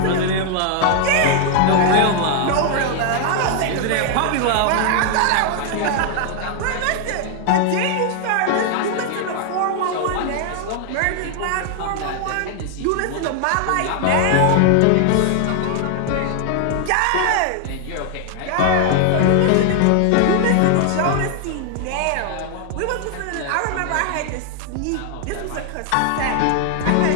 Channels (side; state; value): both; different; correlation 0.00